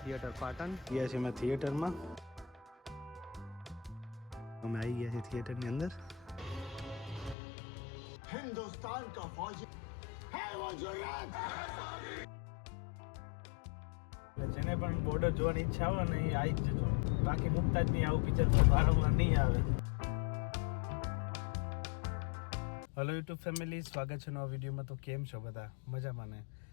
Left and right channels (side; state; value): right; drops out; at 7.4 s